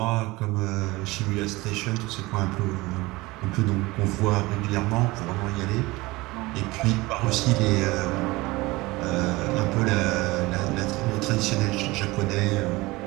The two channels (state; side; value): quieter; left; 21.4 dB